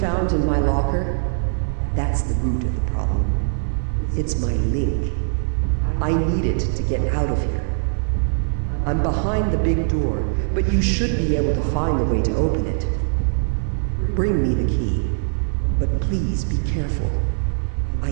in my locker, that's the root of the problem. It's my link. I need it to get out of here. I'm behind the big door, but you should be able to find a way to open it. Bring me the key, but please be careful. I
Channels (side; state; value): left; silent; 65 dB below the other